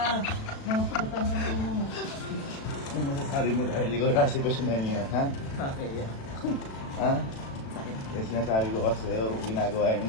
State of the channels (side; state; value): right; late; 36 ms